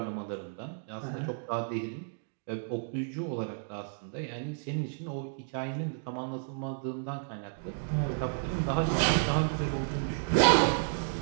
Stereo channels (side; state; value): left; silent; digital silence